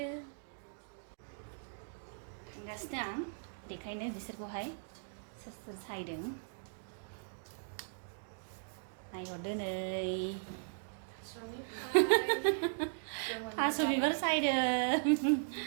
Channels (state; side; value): silent; left; digital silence